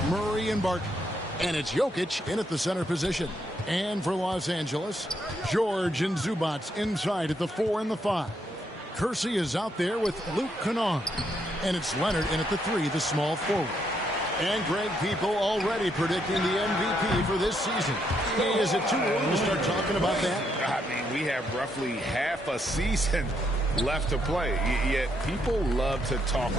Murray and Barton. And it's Jokic in at the center position. And for Los Angeles, George and Zubac inside at the 4 and the 5. Kersey is out there with Luke Kennard. And it's Leonard in at the 3, the small forward. And Greg, people already predicting the MVP for this season. Hey, is it too early to start talking about that? I mean, we have roughly half a season left to play. Yet people love to talk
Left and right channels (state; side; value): normal; both; correlation 0.76